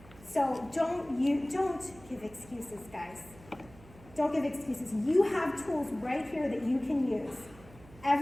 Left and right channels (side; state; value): right; noise; hum, 21 dB below the sound